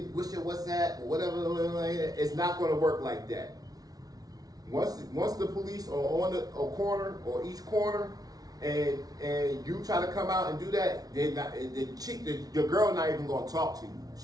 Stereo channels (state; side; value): late; left; 0.18 ms